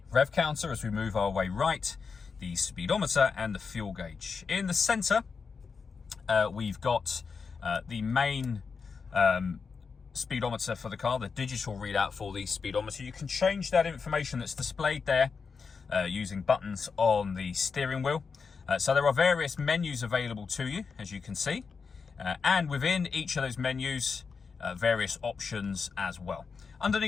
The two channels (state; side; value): quieter; right; 5.3 dB